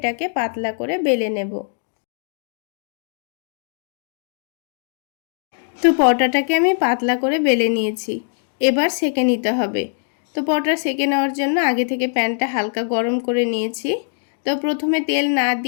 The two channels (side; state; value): right; silent; 65 dB below the other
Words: পাতলা করে বেলে নেব। তো পরোটাটাকে আমি পাতলা করে বেলে নিয়েছি। এবার সেঁকে নিতে হবে। তো পরোটা সেঁকে নেওয়ার জন্য আগে থেকে প্যানটা হালকা গরম করে নিয়েছি। তো প্রথমে তেল না